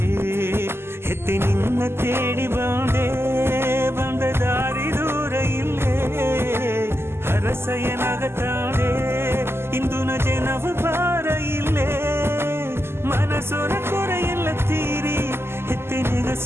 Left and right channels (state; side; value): late; left; 0.12 ms